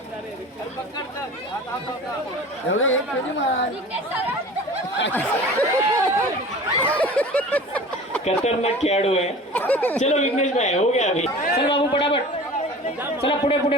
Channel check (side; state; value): both; normal; correlation 0.40